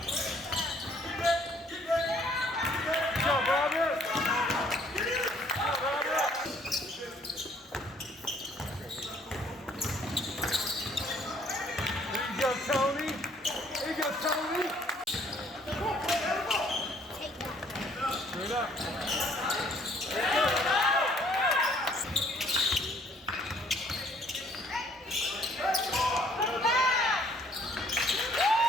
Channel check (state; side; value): normal; both; correlation 0.61